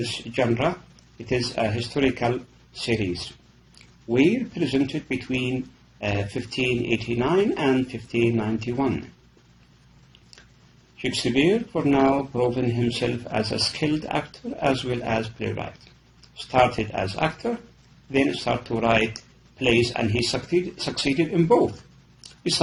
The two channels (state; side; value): identical; both; correlation 1.00